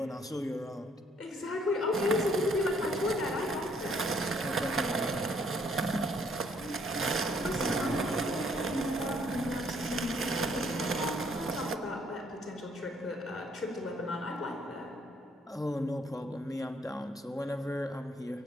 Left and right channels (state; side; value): normal; both; correlation 0.66